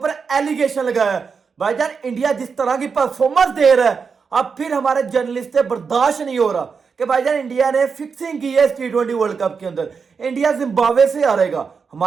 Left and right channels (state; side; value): quieter; left; 5.6 dB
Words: एलिगेशन लगाया है। भाईजान इंडिया जिस तरह की परफॉर्मेंस दे रहा है अब फिर हमारे जर्नलिस्ट से बर्दाश्त नहीं हो रहा कि भाईजान इंडिया ने फिक्सिंग की है इस T20 वर्ल्ड कप के अंदर। इंडिया जिम्बाब्वे से हारेगा।